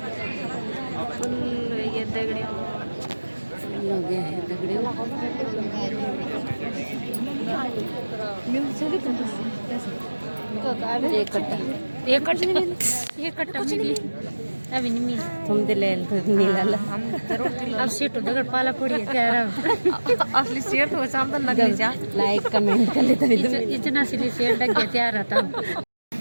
फुल ये दगड़ियों फुल हो गया है दगड़ियों। एक कट्टा मिली अभी नहीं मिली। तुम दिले नीला अब सीट उधर पाला पड़ी है क्या असली सीट हो सामने लग जा। लाइक कमेंट कर लेते इतना असली सीट लग गया तैयार रहता हूँ।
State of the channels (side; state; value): both; inverted; correlation -1.00